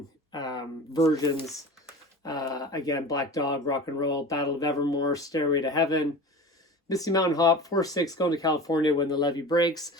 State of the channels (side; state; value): both; normal; correlation 0.34